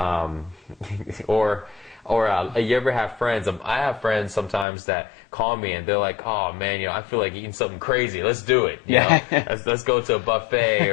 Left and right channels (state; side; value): drops out; right; at 4.7 s